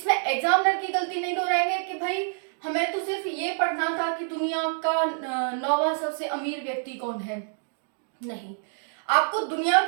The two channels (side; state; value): left; silent; digital silence